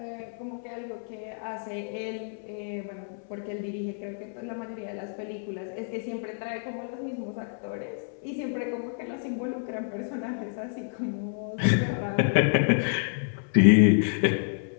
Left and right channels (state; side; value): silent; right; 59 dB below the other